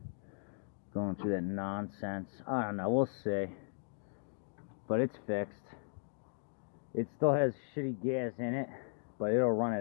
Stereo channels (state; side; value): silent; right; 53 dB below the other